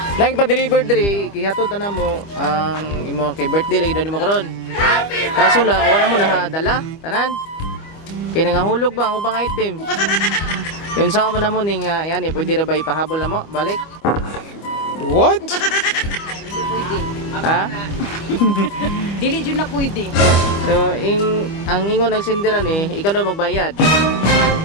lagi pa-deliver diri, kihatod na mo ang imong kay birthday lagi daw nimo karon. Kaso lang, wala mo nahadala, tanan. Kaya nangahulog ba ang ubang item? Yun sa mo na mo ning yan eh, pwede ra ba ipahabol na mo? Balik. What? Ha? Dili jud na pwede. So, ang ingon nagsindiran eh, ikaw daw magbayad.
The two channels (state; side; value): late; right; 25 ms